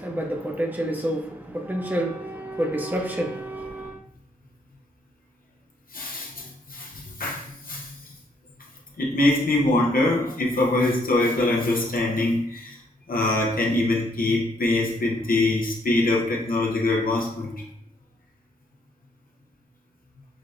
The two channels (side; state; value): both; normal; correlation 0.70